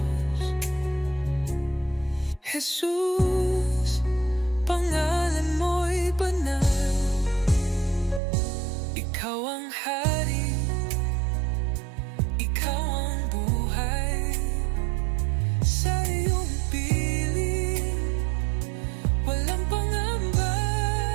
Jesus, pangalan mo'y banal. Ikaw ang hari, ikaw ang buhay. Sa iyong piling, walang pangamba.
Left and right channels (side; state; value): left; drops out; at 8.2 s